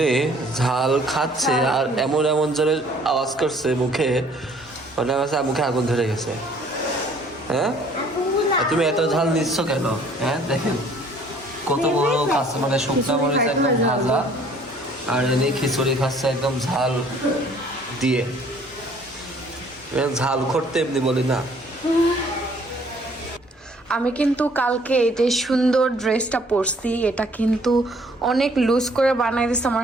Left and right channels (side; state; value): both; normal; correlation 0.58